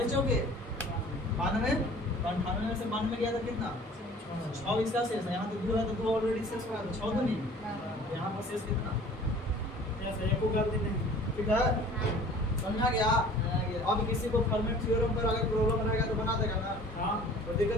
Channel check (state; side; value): normal; both; correlation 0.48